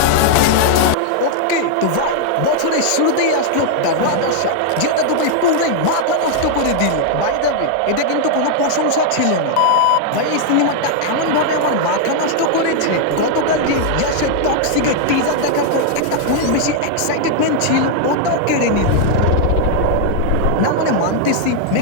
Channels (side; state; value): both; different; correlation 0.00